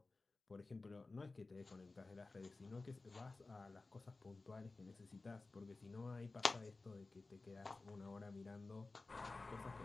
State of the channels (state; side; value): quieter; right; 3.5 dB